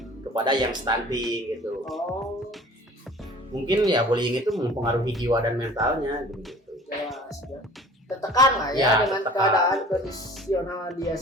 kepada yang stunting gitu. Oh, Mungkin ya bullying itu mempengaruhi jiwa dan mentalnya gitu. jelas ya. Tertekan lah ya, Ya, dengan tertekan. keadaan kondisional dia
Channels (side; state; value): both; normal; correlation 0.46